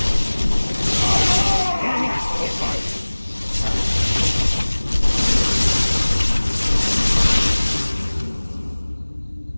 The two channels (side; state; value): both; inverted; correlation -1.00